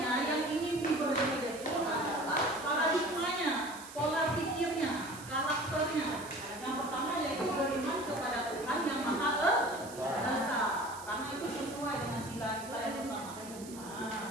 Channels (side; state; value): right; noise; hiss, 15 dB below the sound